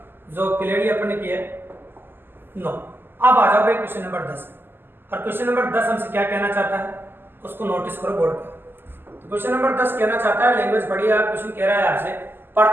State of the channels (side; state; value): left; late; 0.099 ms